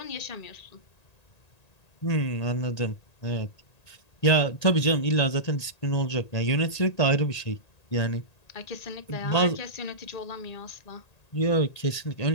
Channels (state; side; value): late; right; 1.8 ms